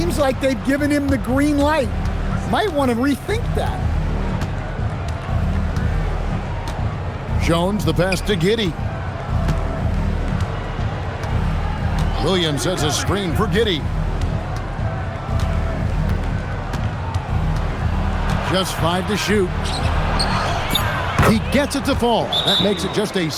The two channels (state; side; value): identical; both; correlation 1.00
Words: like they've given him the green light. Might want to rethink that. Jones, the pass to Giddey. Williams sets a screen for Giddey. Just 5 to shoot. He gets it to fall. That makes it just a